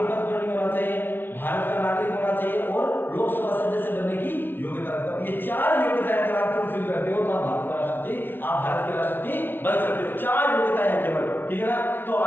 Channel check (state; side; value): late; right; 0.10 ms